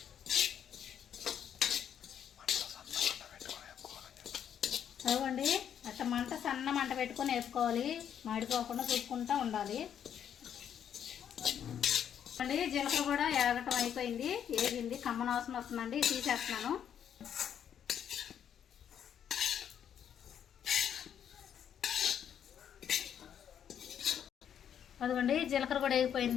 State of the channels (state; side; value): quieter; right; 9.0 dB